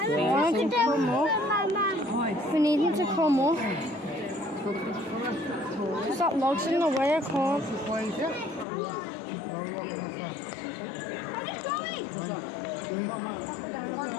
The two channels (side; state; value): right; drops out; at 8.7 s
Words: We need him to come up. Because that log's in the way, I can't.